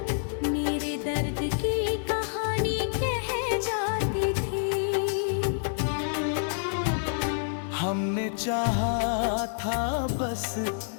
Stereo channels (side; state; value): right; silent; digital silence